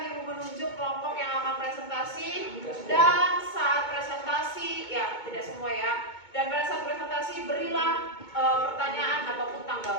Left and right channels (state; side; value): late; right; 2.2 ms